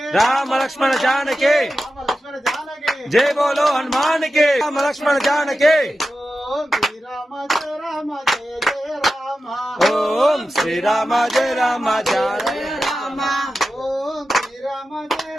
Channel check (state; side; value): normal; both; correlation 0.92